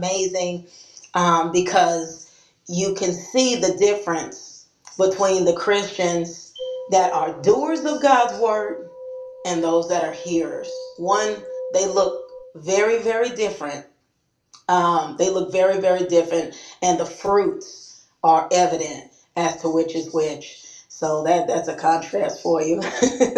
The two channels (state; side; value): identical; both; correlation 1.00